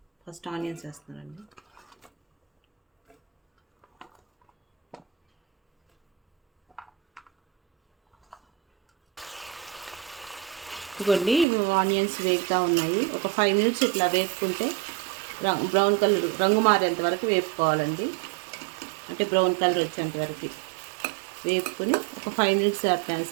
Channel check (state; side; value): drops out; left; at 11.5 s